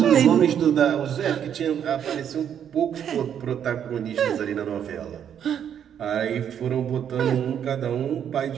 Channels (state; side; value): quieter; left; 8.9 dB